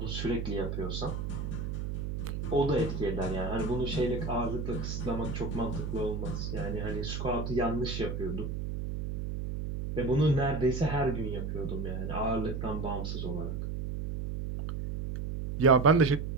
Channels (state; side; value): noise; right; hum, 3 dB below the sound